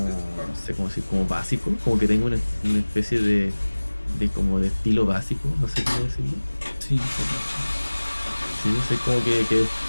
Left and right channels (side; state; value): both; inverted; correlation -1.00